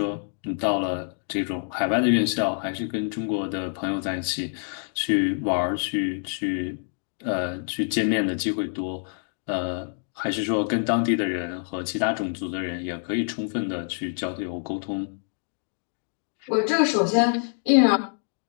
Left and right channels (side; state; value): right; silent; 61 dB below the other